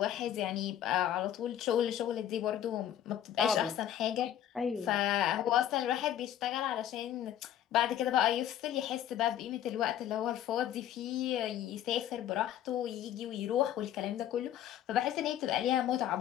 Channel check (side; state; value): right; quieter; 11.1 dB